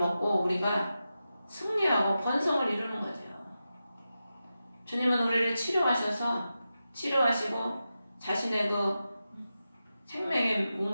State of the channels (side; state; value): both; inverted; correlation -0.91